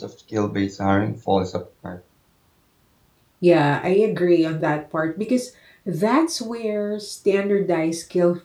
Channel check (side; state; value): both; identical; correlation 1.00